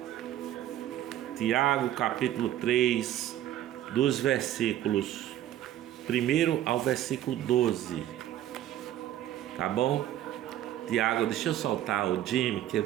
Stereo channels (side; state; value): left; quieter; 12.5 dB